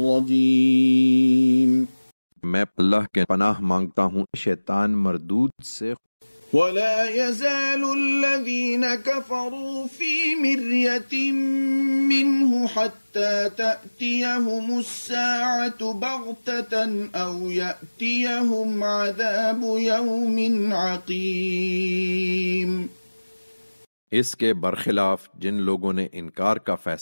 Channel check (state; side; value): inverted; both; correlation -1.00